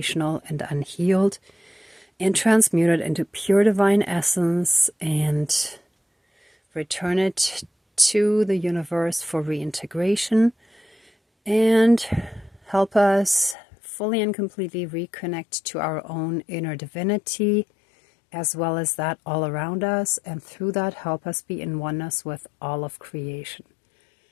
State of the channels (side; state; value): right; drops out; at 13.6 s